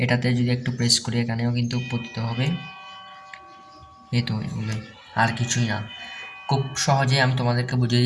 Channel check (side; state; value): both; identical; correlation 1.00